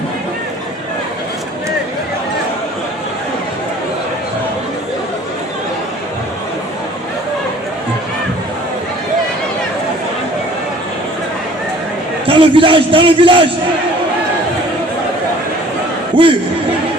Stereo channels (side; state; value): both; normal; correlation 0.52